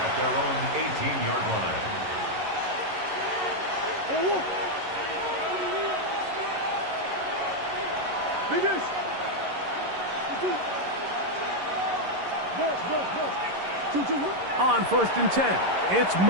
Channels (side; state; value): left; late; 11 ms